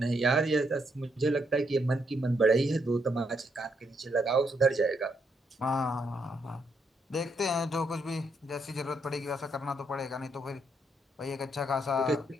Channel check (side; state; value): both; normal; correlation 0.76